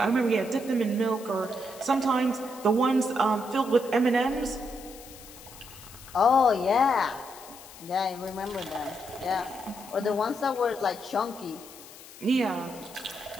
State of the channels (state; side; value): noise; left; hiss, 18 dB below the sound